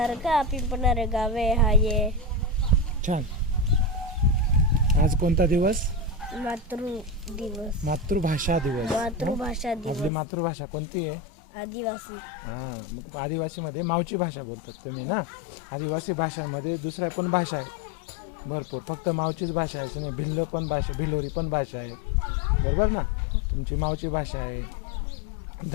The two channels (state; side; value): drops out; right; at 10.1 s